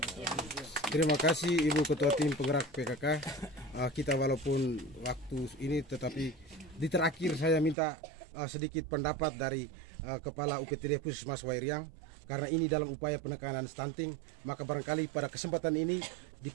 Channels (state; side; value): drops out; left; at 7.8 s